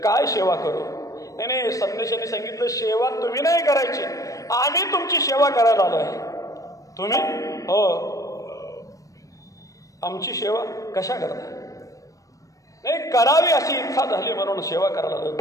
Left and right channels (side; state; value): right; late; 0.16 ms